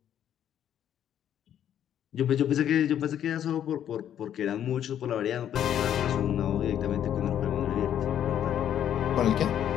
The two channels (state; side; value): quieter; right; 10.1 dB